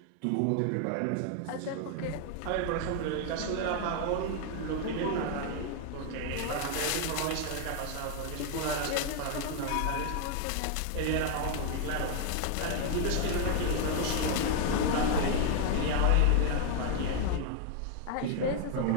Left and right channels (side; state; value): both; different; correlation 0.00